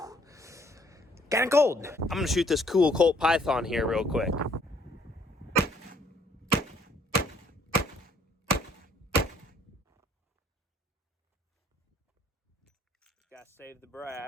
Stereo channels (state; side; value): normal; both; correlation 0.63